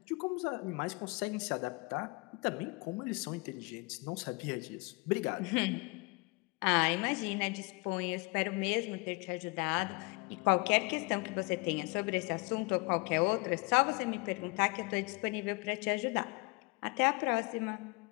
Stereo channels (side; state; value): right; quieter; 27.8 dB